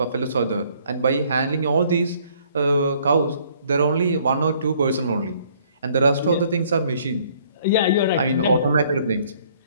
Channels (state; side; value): inverted; both; correlation -0.62